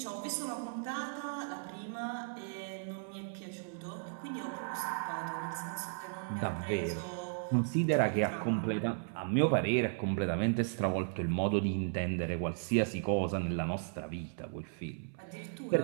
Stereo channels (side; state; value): left; silent; 54 dB below the other